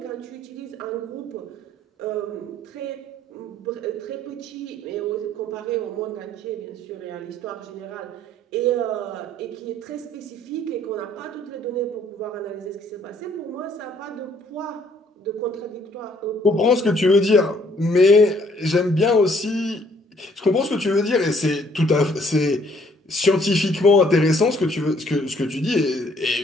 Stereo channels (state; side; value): normal; both; correlation 0.63